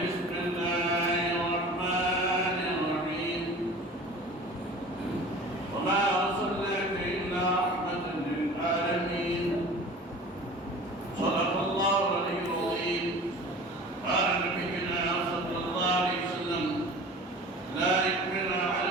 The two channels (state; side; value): normal; both; correlation 0.40